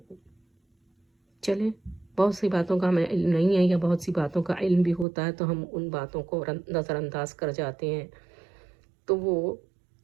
چلیں، بہت سی باتوں کا ہمیں علم نہیں ہے یا بہت سی باتوں کا علم بھی ہوتا ہے تو ہم ان باتوں کو نظر انداز کر جاتے ہیں، تو وہ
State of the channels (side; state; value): left; drops out; at 5.1 s